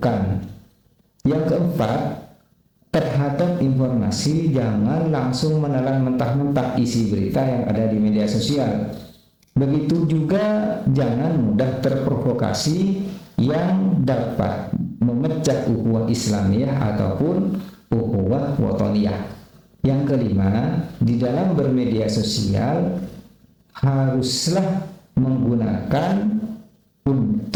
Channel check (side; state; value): both; identical; correlation 1.00